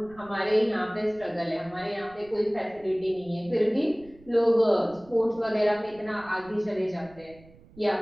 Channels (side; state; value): right; noise; rumble, 24 dB below the sound